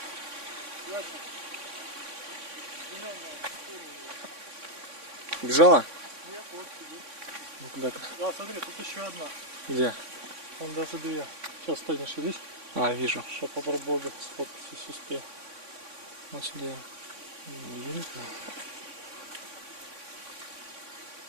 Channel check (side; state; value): left; late; 3.6 ms